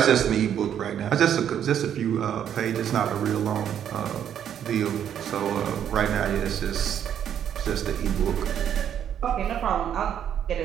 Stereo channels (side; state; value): left; quieter; 9.4 dB